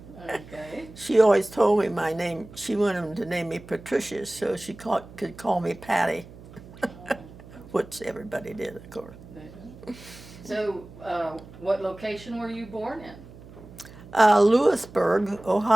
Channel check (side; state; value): right; noise; hum, 18 dB below the sound